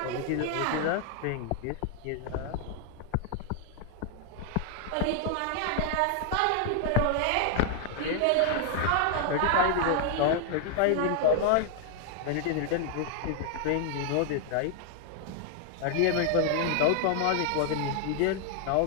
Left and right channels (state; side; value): different; both; correlation 0.00